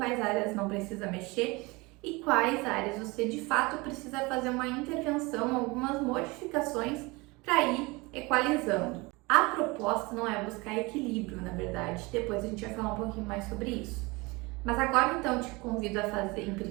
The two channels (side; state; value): left; quieter; 24.8 dB